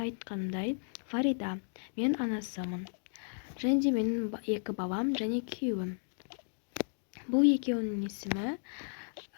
айтқанымдай Фарида. Мен анасымын. Және де менің 2 балам және күйеуім. Бұл екеуінің есімі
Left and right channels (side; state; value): right; silent; digital silence